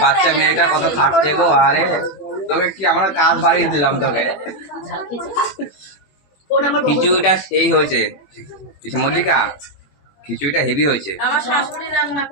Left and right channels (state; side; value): late; right; 21 ms